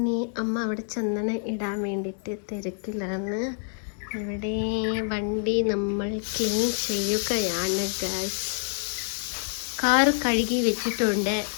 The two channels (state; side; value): silent; right; 60 dB below the other